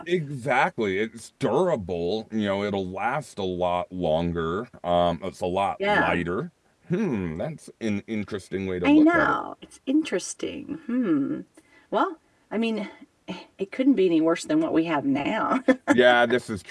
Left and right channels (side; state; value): both; identical; correlation 1.00